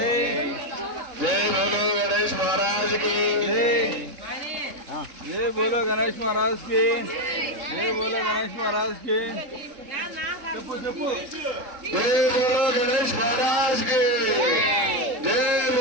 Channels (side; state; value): left; late; 3.7 ms